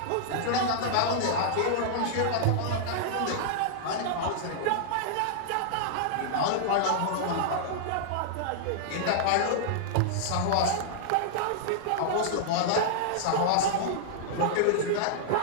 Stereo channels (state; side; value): different; both; correlation -0.01